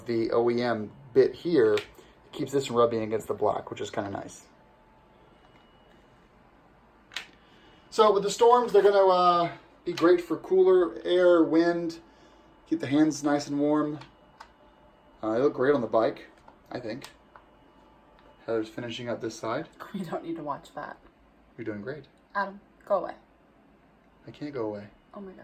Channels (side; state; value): both; identical; correlation 1.00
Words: the OEM bit here, it keeps this from rubbing against the black, which is kind of nice. So with the Storms, they're going to be great for cooler air, wind, keep the hands nice and warm. They look great on the bike, I think. Heather's finishing up this side. You don't need to watch that. You're doing great. Adam, go away. I can't go away. Oh my